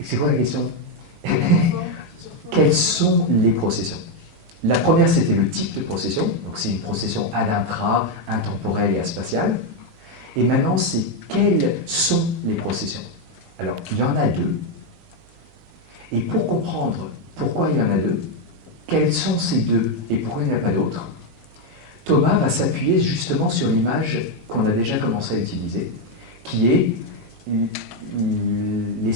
c'est quoi la question? Quelles sont les processions? La première, c'était le type de procession. Donc, c'est une procession ad intra, intemporelle et aspatiale. Et maintenant, c'est quelles sont les processions? Alors, il y en a deux. Et pour comprendre pourquoi il y en a deux, quels sont ces deux et pourquoi il n'y en a pas d'autres, Thomas va s'appuyer justement sur l'image qu'on a déjà commencé à utiliser, qui est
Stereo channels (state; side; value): normal; both; correlation 0.04